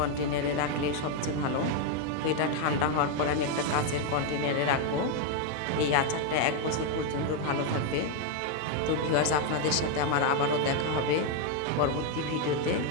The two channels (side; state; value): both; different; correlation 0.01